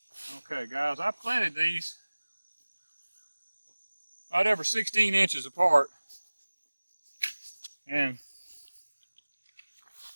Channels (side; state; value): both; inverted; correlation -1.00